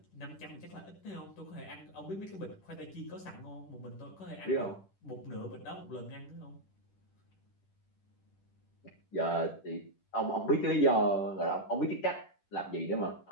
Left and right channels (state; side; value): late; right; 10 ms